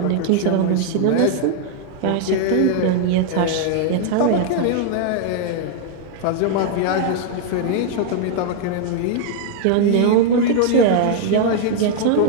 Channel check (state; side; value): different; both; correlation 0.00